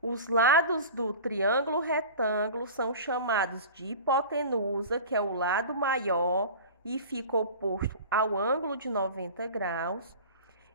os lados do triângulo retângulo são chamados de hipotenusa, que é o lado maior e fica oposto ao ângulo de 90 graus.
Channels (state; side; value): inverted; both; correlation -0.36